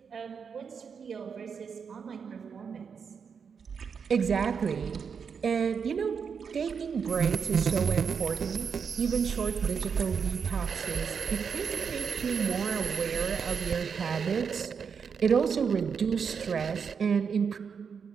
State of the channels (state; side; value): quieter; left; 6.3 dB